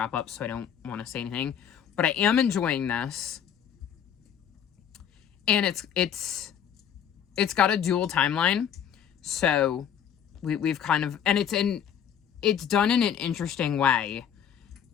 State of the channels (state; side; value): quieter; right; 8.8 dB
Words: up, so I don't want to say anything. But I am enjoying this. And it's got a dual timeline. So we've kind of, and it's done in an interesting way,